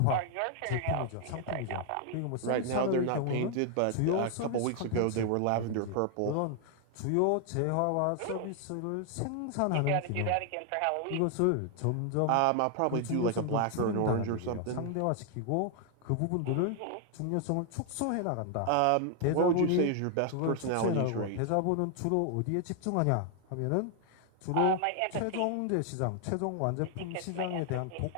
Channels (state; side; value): different; both; correlation 0.00